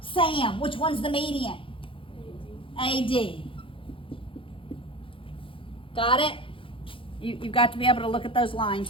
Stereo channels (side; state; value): right; late; 0.25 ms